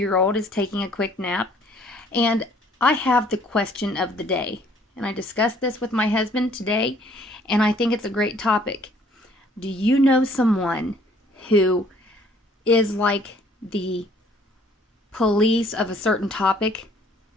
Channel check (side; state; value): both; normal; correlation 0.59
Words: is taking a quick nap. And I have the question of the day. And I discussed this with my husband today, and I think it's a great topic. Do you know someone who is like the police of a certain topic?